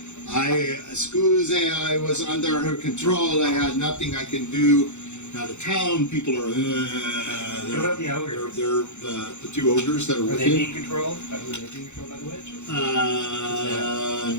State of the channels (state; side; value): late; right; 0.83 ms